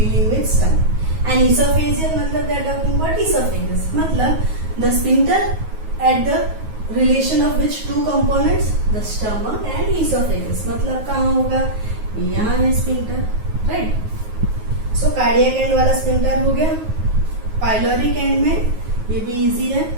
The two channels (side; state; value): left; late; 9.4 ms